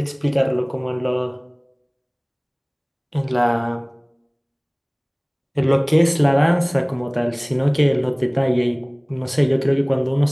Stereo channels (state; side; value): identical; both; correlation 1.00